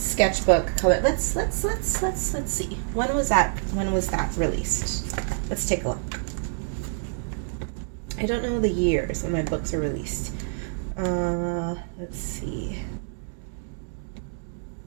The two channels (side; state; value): left; silent; digital silence